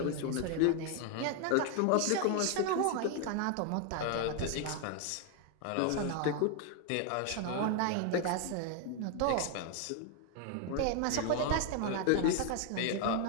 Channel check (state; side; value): different; both; correlation 0.01